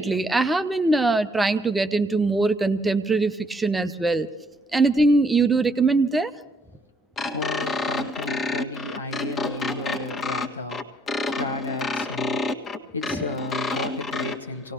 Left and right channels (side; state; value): both; normal; correlation 0.68